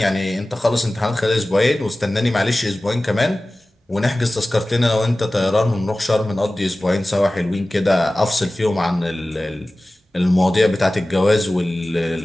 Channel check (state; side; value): normal; both; correlation 0.97